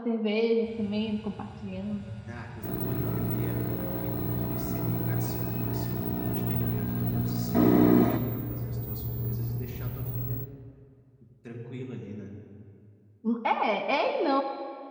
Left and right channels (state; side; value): identical; both; correlation 1.00